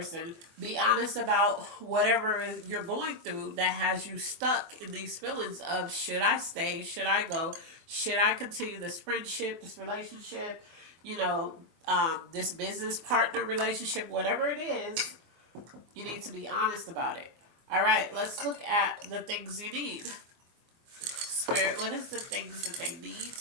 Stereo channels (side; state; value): left; late; 23 ms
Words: be honest about whatever you're going through that has you stuck in these feelings of, should I stay? Should I go? Should I continue this friendship, this relationship, this business partner relationship, whatever it is, you need to be honest about it. All right, let's look at the things you need. Spirit, what is the things that they need,